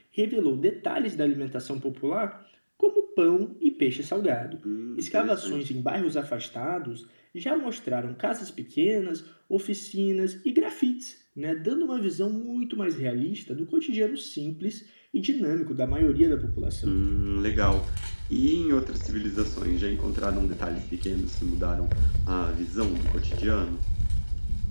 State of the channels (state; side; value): inverted; both; correlation -1.00